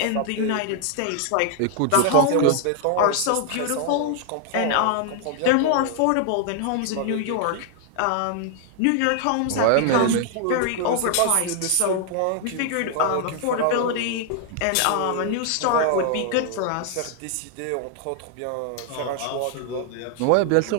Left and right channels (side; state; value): both; different; correlation 0.00